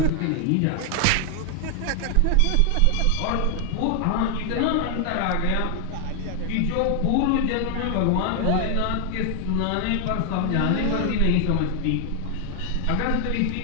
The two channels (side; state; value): both; different; correlation 0.00